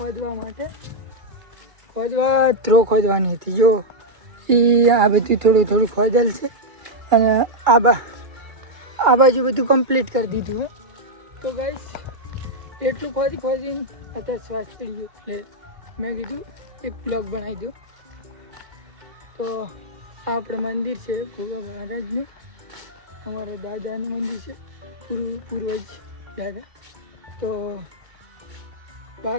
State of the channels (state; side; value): late; left; 2.2 ms